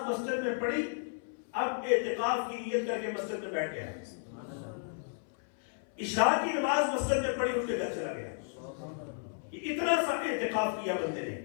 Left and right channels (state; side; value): silent; right; 56 dB below the other